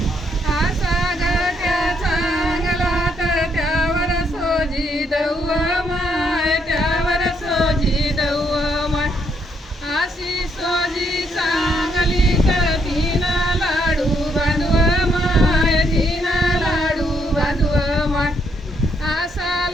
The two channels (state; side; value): normal; both; correlation 0.74